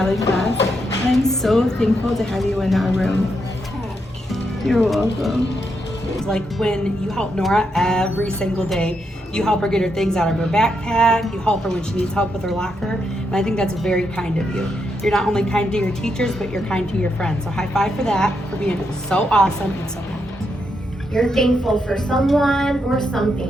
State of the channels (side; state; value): both; normal; correlation 0.81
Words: class. And I'm so thankful to have you in our room. You're welcome. It's like when you help Nora every single day. You help her get her things out of her backpack. You help her when she needs help with her locker. And I think that's very kind of you. You're not only kind to your teachers, but you're kind to your friends. So high five for that, for being so awesome and so kind. You're thankful for someone or